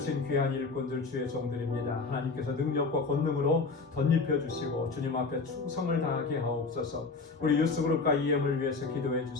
귀한 일꾼들 주의 종들입니다. 하나님께서 능력과 권능으로 덧입혀 주시고 주님 앞에 충성을 다하게 하옵소서. 우리 유스그룹과 EM을 위해서 기도해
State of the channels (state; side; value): quieter; right; 4.2 dB